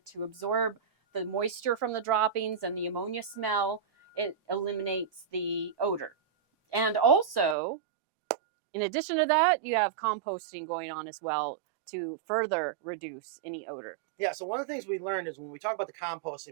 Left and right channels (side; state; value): left; drops out; at 7.6 s